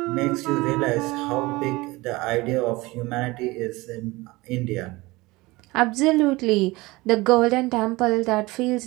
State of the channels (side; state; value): left; quieter; 21.5 dB